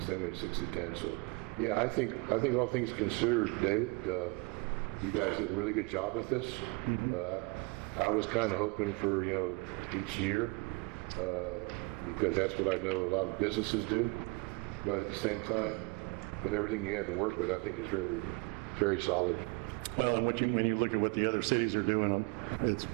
same way 6 to 10, so, yeah, I think all things considered, David, you guys did a really good job with this. I was kind of hoping for, each year, because that's what I know a lot of businesses do. But at the same time, with everything you had to work with, I think it's really very solid. Well, and when you look at what the other cities are doing,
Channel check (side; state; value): left; quieter; 28.7 dB